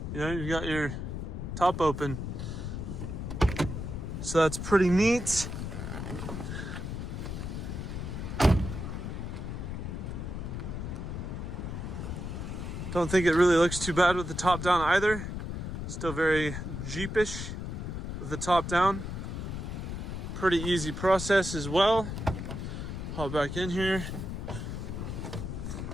you've got your top open. So that's pretty neat. Don't think it really looks too bad with the top down either. Still very Jeepish with the top down. Pretty easy process as well. Hop back in here.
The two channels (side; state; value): left; noise; rumble, 5 dB below the sound